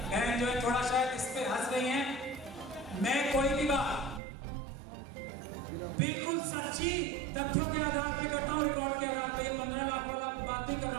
जो है थोड़ा शायद इस पे हंस रही हैं, मैं कोई भी बात बिल्कुल सच्ची तथ्यों के आधार पे करता हूं, रिकॉर्ड के आधार पे। ये 15 लाख वाला बात नहीं कर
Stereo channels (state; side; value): drops out; left; at 4.2 s